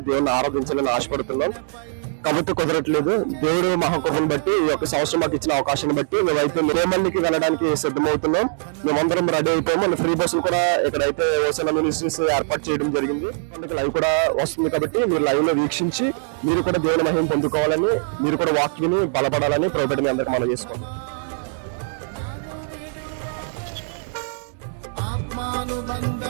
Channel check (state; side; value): silent; left; digital silence